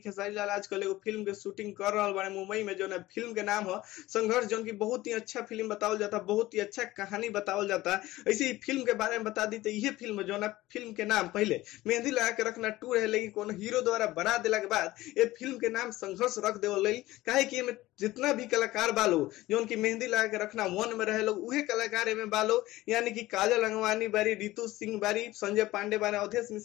लाल आजकल एगो फिल्म के शूटिंग कर रहा बारे मुंबई में, जो ना फिल्म के नाम है संघर्ष, जो की बहुत ही अच्छा फिल्म बतावल जाता, बहुत ही अच्छा कहानी बतावल जाता। ऐसे ही फिल्म के बारे में बता दी तो ये फिल्म जो ना फिल्म के नाम पहले मेहंदी लगा के रखना टू रहे, लेकिन कोनो हीरो द्वारा बना दिला के बाद ये फिल्म के नाम संघर्ष रख देवल। काहे कि जितना भी कलाकार बालो जो उनकी मेहंदी लगा के रखना वन में रहे लोग, उहे कलाकार में बालो, यानी कि काजल अंगवानी बारी, रितु सिंह बारी, संजय पांडे बारे, अवधेश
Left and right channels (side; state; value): right; quieter; 17.4 dB